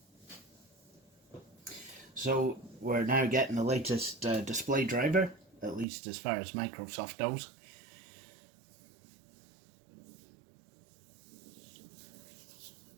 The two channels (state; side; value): drops out; left; at 5.9 s